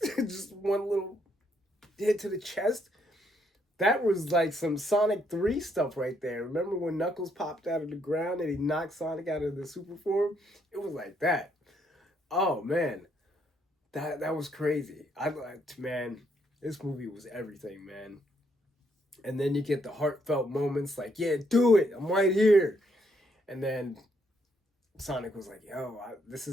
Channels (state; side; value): normal; both; correlation 0.73